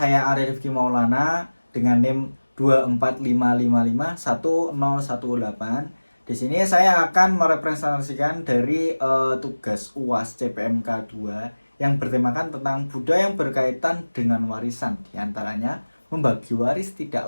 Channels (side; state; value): both; inverted; correlation -1.00